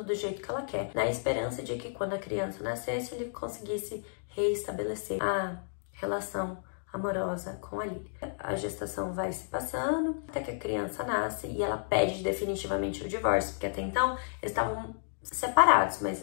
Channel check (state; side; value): silent; right; digital silence